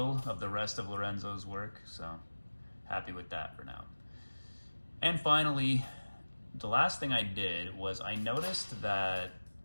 of the rest of Lorenzo's work, so happy with that for now. And finally, the last thing I did was I noticed that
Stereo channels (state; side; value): inverted; both; correlation -1.00